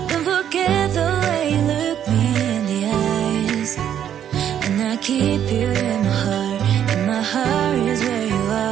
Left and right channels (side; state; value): left; quieter; 9.8 dB